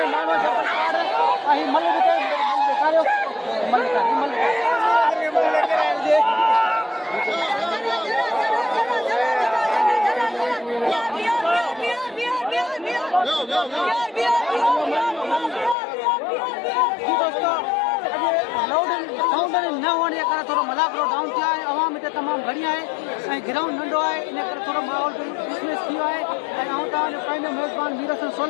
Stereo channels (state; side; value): drops out; right; at 15.8 s